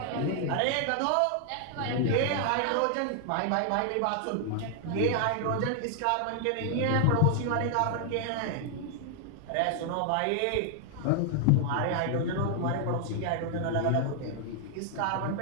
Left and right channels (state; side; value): different; both; correlation 0.00